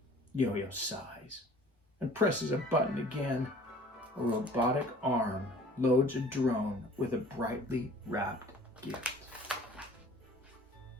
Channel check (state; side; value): normal; both; correlation 0.49